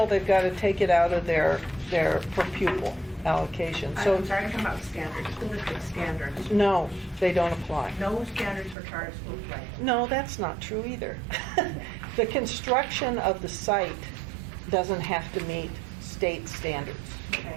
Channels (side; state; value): left; drops out; at 8.8 s